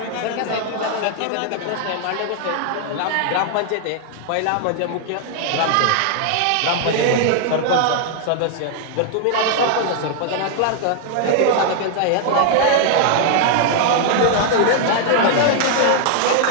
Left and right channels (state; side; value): different; both; correlation 0.00